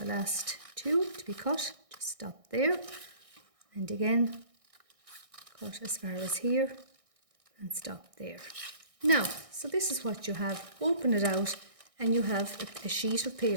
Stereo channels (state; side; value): late; left; 1.6 ms